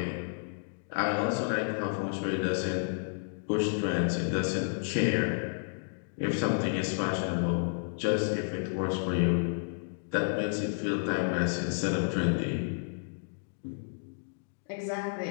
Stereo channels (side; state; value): right; silent; digital silence